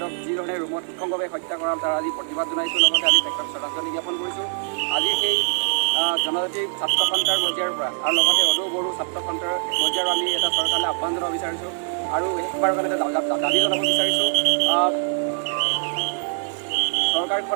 যিধৰণে ৰুমত নিঃসংগভাৱে হত্যা কৰা তাৰ আজি প্ৰতিবাদ জনাইছোঁ। লগতে আমি তেখেতক শ্ৰদ্ধাঞ্জলি জ্ঞাপন কৰিছোঁ। আজি সেই জনজাতি ছাত্ৰ সন্থাৰ পৰ্যায়ৰ পৰা আৰু লগতে সদৌ বড়ো ছাত্ৰ সন্থাৰ পৰ্যায়ৰ আমি এটা চৰকাৰলৈ আহ্বান জনাব বিচাৰিছোঁ আৰু শেষবাৰৰ কাৰণে দাবী জনাব বিচাৰিছোঁ।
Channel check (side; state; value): left; silent; digital silence